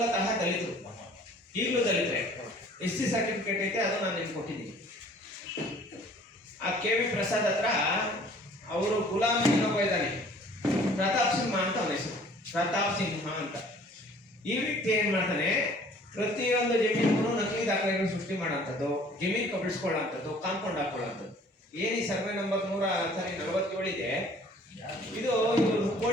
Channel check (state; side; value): normal; both; correlation 0.53